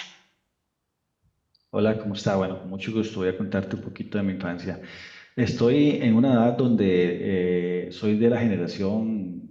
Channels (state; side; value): identical; both; correlation 1.00